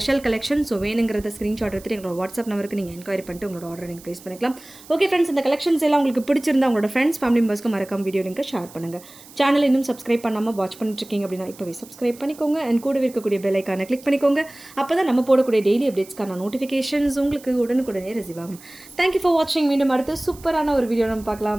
collection. So வேணுங்கிறத ஸ்க்ரீன்ஷாட் எடுத்துகிட்டு எங்களோட வாட்ஸ்அப் நம்பருக்கு நீங்கள் என்கொயரி பண்ணிட்டு உங்களோட ஆர்டர் நீங்கள் ப்ளேஸ் பண்ணிக்கலாம். ஓகே ஃப்ரெண்ட்ஸ், இந்த கலெக்ஷன்ஸ் எல்லாம் உங்களுக்கு பிடிச்சிருந்தா உங்களோட ஃப்ரெண்ட்ஸ், ஃபேமிலி மெம்பர்ஸ்க்கு மறக்காம வீடியோ லிங்கை ஷேர் பண்ணுங்கள். சேனல் இன்னும் சப்ஸ்கிரைப் பண்ணாமல் வாட்ச் பண்ணிட்டு இருக்கீங்க அப்படின்னா இப்போவே சப்ஸ்கிரைப் பண்ணிக்கோங்க. அண்ட் கூடவே இருக்கக்கூடிய பெல் ஐக்கானை கிளிக் பண்ணிக்கோங்க. அப்போ தான் நம்ம போடக்கூடிய டெய்லி அப்டேட்ஸ்க்கான நோட்டிஃபிகேஷன்ஸ் உங்களுக்கு உடனுக்குடனே ரிசீவ் ஆகும். தேங்க்யூ ஃபார் வாட்சிங். மீண்டும் அடுத்து சூப்பரான ஒரு வீடியோ நம்ம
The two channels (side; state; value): right; noise; hiss, 21 dB below the sound